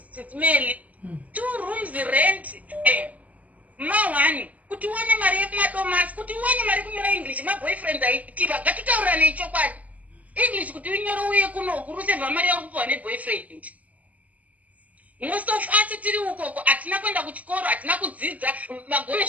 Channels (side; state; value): left; late; 0.075 ms